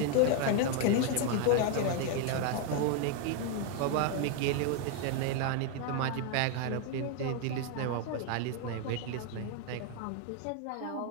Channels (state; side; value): different; both; correlation 0.01